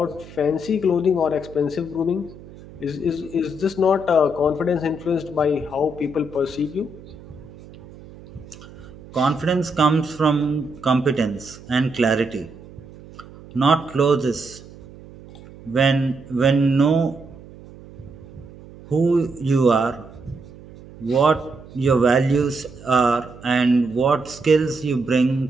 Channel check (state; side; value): noise; right; hum, 19 dB below the sound